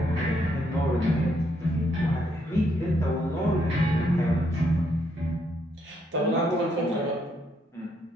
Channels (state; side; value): normal; both; correlation 0.74